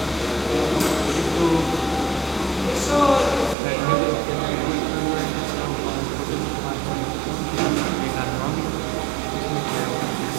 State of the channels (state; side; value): drops out; left; at 3.6 s